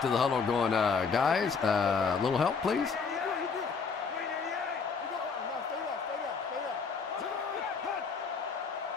to the huddle going, guys, a little help, please?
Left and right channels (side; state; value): right; quieter; 5.4 dB